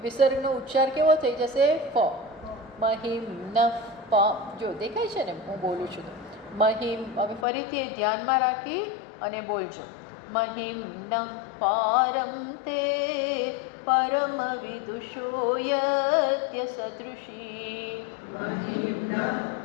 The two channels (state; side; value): drops out; right; at 7.5 s